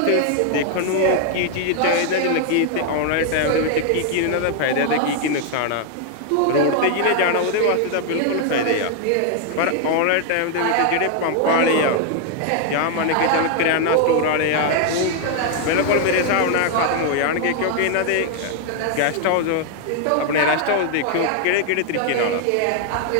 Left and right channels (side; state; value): both; different; correlation 0.00